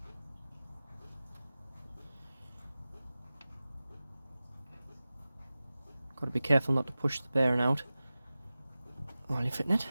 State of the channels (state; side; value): inverted; both; correlation -0.96